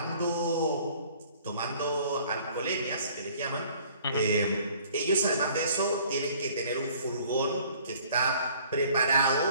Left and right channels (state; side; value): inverted; both; correlation -0.55